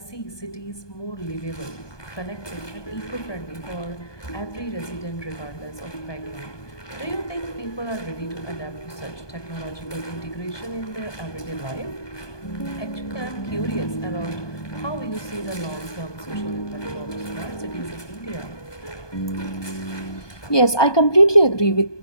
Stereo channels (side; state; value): right; late; 1.2 ms